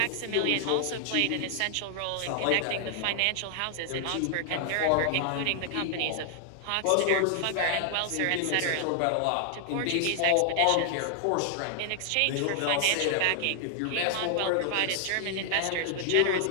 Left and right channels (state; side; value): different; both; correlation 0.00